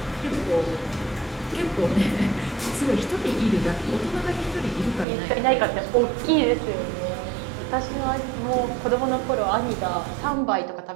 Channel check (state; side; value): drops out; left; at 5.1 s